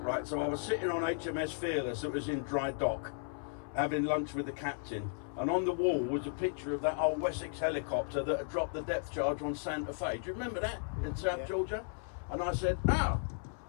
right? So I was sitting on HMS Fearless that was in dry dock, having lunch with the captain, and on the wall was a picture of that old Wessex helicopter that had dropped the depth charge on Santa Fe. Do you remember that in South Georgia? And I said,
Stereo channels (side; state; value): right; silent; 54 dB below the other